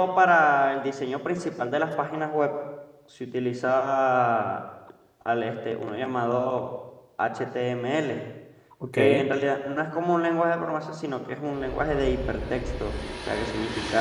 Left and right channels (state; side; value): identical; both; correlation 1.00